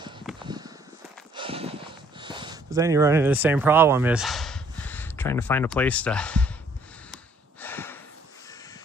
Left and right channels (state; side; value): normal; both; correlation 0.63